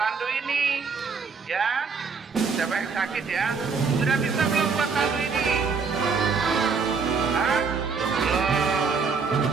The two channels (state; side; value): quieter; left; 5.2 dB